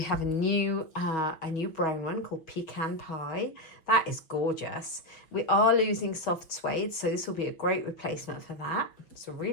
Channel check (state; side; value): late; right; 6.3 ms